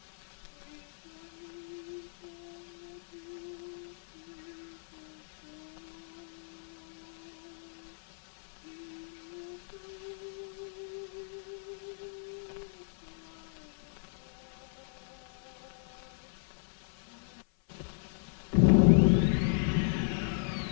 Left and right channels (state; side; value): silent; right; 54 dB below the other